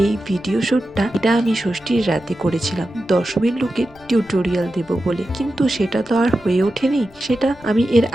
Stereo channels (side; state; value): left; noise; rumble, 27 dB below the sound